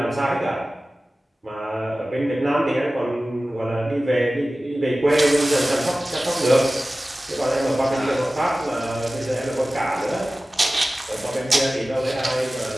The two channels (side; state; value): both; normal; correlation 0.96